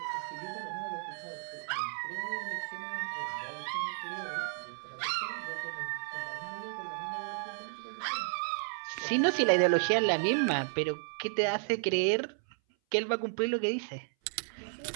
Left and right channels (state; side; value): silent; left; 56 dB below the other